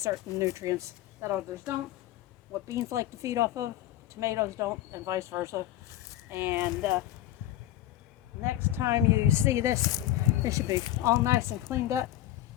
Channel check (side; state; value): right; quieter; 13.7 dB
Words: nutrients that others don't. What beans like to feed off of, tomatoes don't, and vice versa. And next time you see this, it should be all nice and cleaned up.